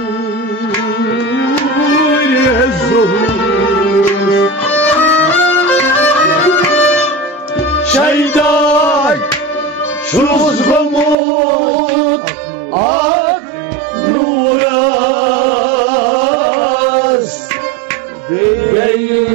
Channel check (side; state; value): left; drops out; at 11.2 s